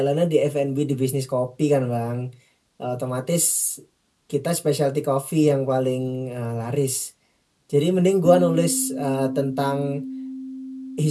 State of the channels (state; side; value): identical; both; correlation 1.00